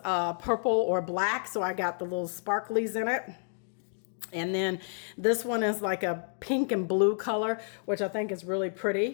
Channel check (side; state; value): right; silent; digital silence